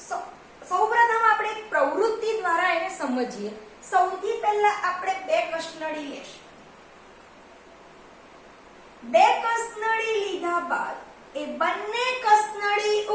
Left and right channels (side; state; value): both; identical; correlation 1.00